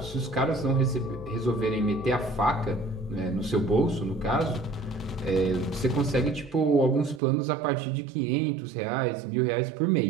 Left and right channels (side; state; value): left; drops out; at 7.2 s